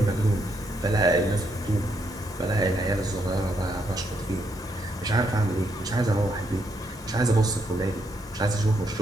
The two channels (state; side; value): normal; both; correlation 0.76